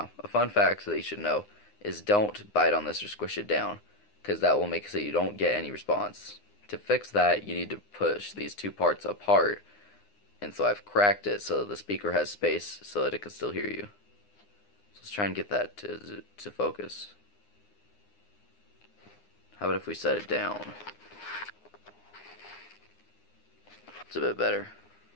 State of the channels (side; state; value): right; late; 9.8 ms